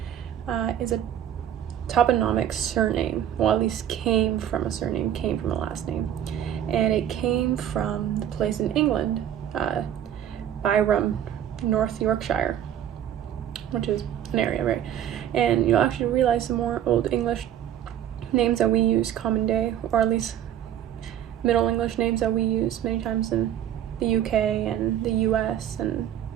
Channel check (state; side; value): quieter; left; 10.5 dB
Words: is a toponymic surname. Well, at least came from a surname, came from a last name. And it came from the place in England, Byron, North Yorkshire, which is an area, right? And you'll actually realize some more Old English names that we use common day, or at least Middle English names that we use many times in the UK and the US and